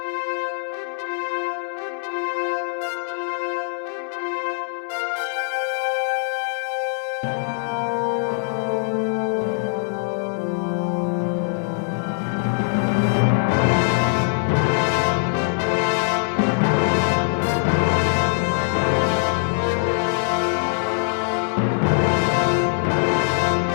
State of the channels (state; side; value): silent; right; 64 dB below the other